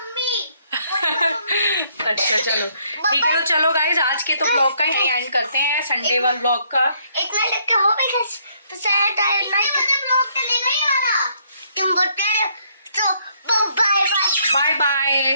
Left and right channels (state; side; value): inverted; both; correlation -0.69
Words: अच्छा चलो ठीक है। तो चलो गाइज आज के तो ब्लॉग का ही एंड करते हैं, संडे वाला ब्लॉग का। इतना लिखा हो बिकॉज़ तो सैड टाइम लाइक ब्लॉग चलेगा ही वाला तुम बोलते हो। तो बाय बाय बाय बाय।